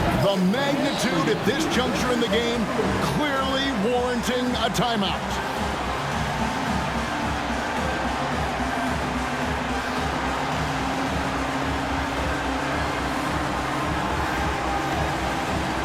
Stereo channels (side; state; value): both; identical; correlation 1.00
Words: The magnitude at this juncture in the game clearly warranting a timeout.